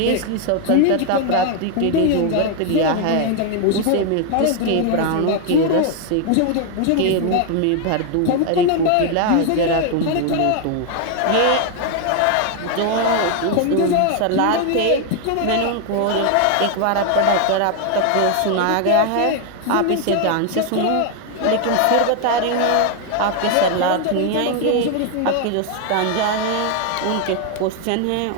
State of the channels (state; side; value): different; both; correlation 0.00